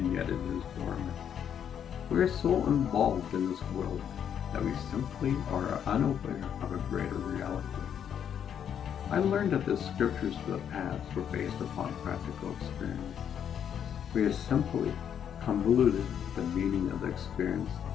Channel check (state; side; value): quieter; right; 8.7 dB